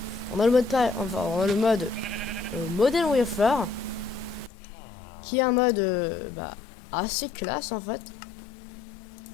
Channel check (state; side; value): drops out; right; at 4.5 s